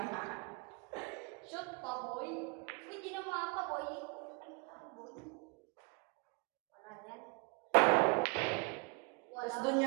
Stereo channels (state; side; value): quieter; left; 30.7 dB